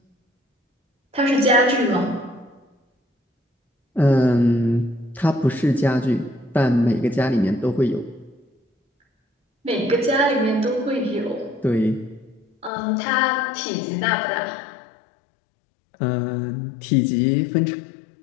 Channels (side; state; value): right; drops out; at 12.7 s